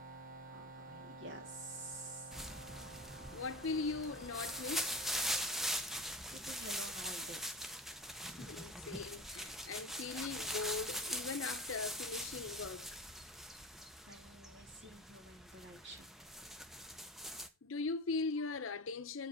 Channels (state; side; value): normal; both; correlation 0.30